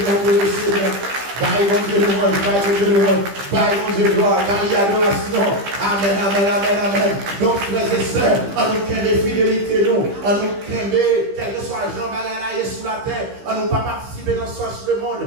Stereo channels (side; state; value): left; late; 15 ms